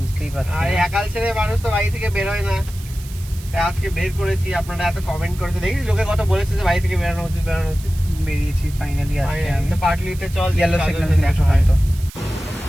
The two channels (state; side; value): noise; right; hiss, 18 dB below the sound